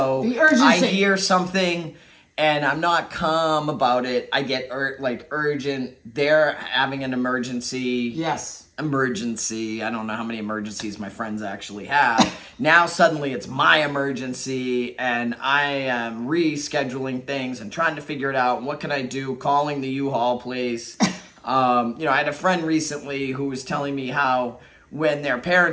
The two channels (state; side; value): identical; both; correlation 1.00